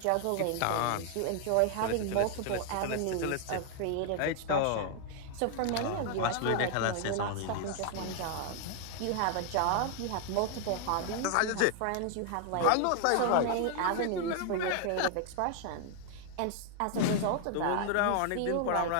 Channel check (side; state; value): both; different; correlation 0.00